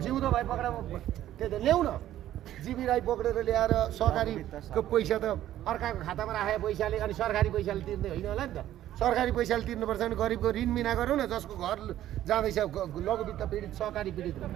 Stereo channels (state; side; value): quieter; left; 12.8 dB